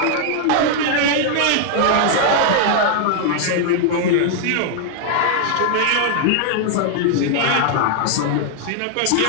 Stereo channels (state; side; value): different; both; correlation 0.00